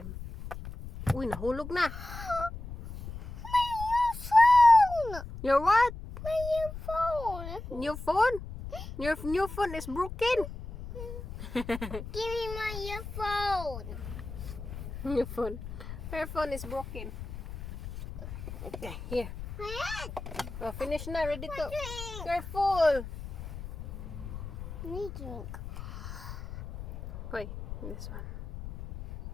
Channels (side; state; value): left; noise; rumble, 10 dB below the sound